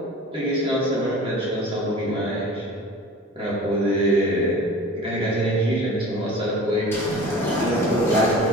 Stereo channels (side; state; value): both; normal; correlation 0.40